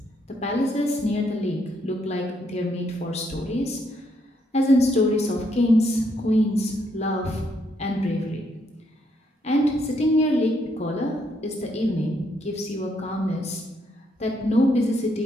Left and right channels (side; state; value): both; normal; correlation 0.74